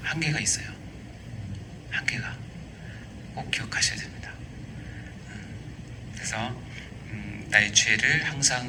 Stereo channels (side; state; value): both; identical; correlation 1.00